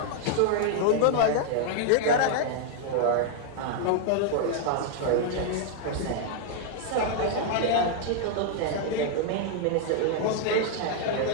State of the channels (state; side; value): different; both; correlation 0.00